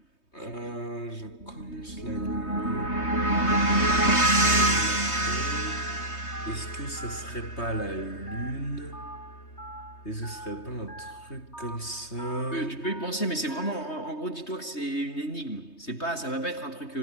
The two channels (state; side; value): late; right; 3.2 ms